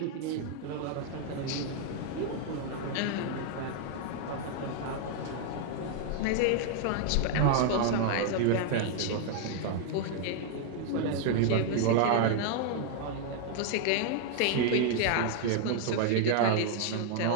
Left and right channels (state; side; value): different; both; correlation 0.00